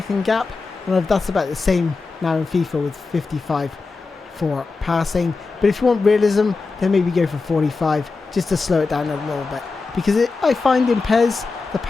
gap, and that's about the same now in FIFA with 55 for passing. But if you want realism, then maybe go for 45 just to slow it down a little bit, because I find in PES the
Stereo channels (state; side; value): quieter; right; 4.1 dB